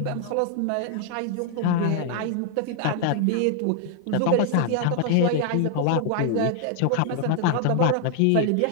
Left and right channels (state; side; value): different; both; correlation 0.00